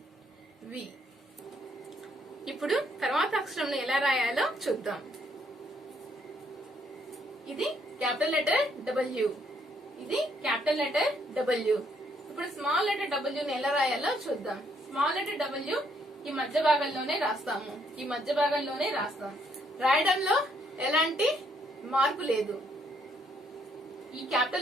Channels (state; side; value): normal; both; correlation 0.70